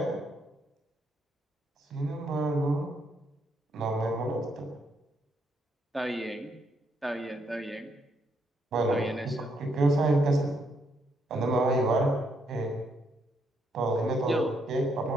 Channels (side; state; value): both; normal; correlation 0.75